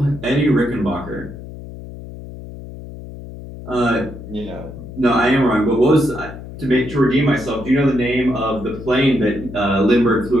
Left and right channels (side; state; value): left; noise; hum, 13 dB below the sound